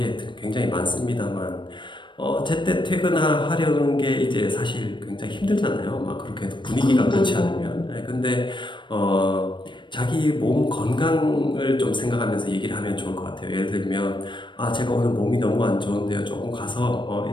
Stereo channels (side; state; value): right; late; 0.23 ms